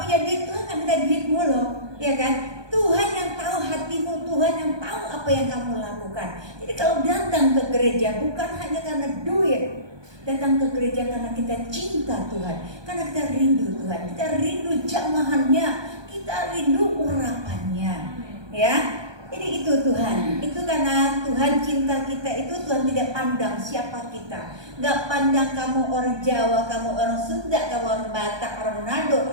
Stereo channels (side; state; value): left; late; 1.2 ms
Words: punya duit. Tuhan nggak minta duitmu loh, ya kan? Tuhan yang tahu hatimu, Tuhan yang tahu apa yang kamu lakukan. Jadi kalau datang ke gereja bukan hanya karena duit, datang ke gereja karena kita cinta Tuhan, karena kita rindu Tuhan, kita rindu jamahannya, kita rindu urapannya, ya. Jadi itu Tuhan, itu karena Tuhan cinta kita itu. Tuhan tidak pandang siapa kita, nggak pandang kamu orang Jawa, kamu orang Sunda, kamu orang Batak, orang Manado